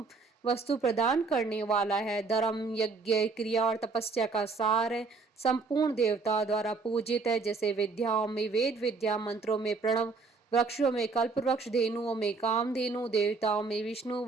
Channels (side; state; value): left; quieter; 4.3 dB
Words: वस्तु प्रदान करने वाला है। धर्म, यज्ञ, क्रिया और तपस्या का सार है। संपूर्ण देवता द्वारा पूजित है, जैसे विद्याओं में वेद विद्या, मंत्रों में प्रणव, वृक्षों में कल्प वृक्ष, धेनुओं में कामधेनु, देवताओं में विष्णु,